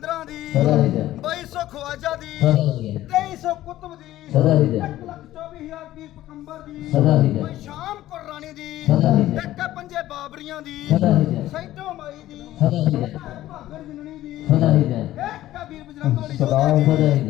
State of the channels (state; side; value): quieter; right; 14.5 dB